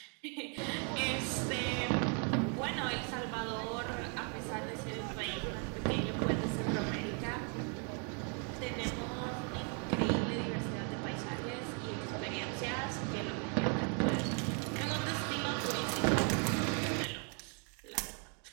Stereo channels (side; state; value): left; quieter; 39.0 dB